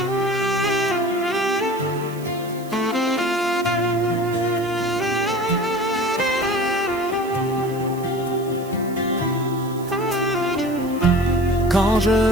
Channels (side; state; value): right; noise; hiss, 20 dB below the sound